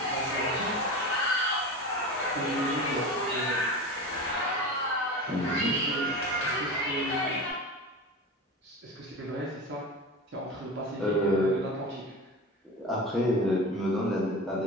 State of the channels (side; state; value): both; normal; correlation 0.29